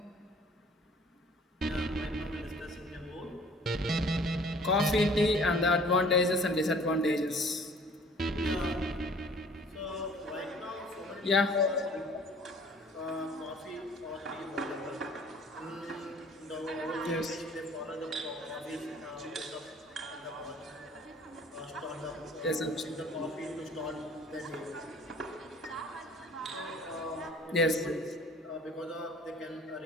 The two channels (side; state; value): both; normal; correlation 0.52